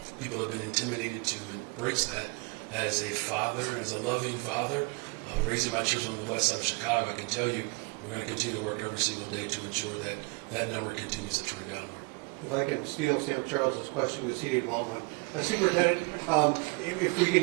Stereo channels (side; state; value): left; quieter; 31.5 dB